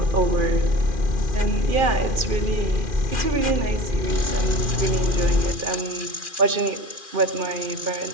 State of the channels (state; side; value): late; left; 2.4 ms